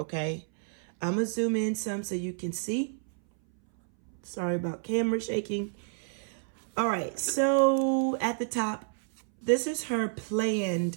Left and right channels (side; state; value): left; silent; 58 dB below the other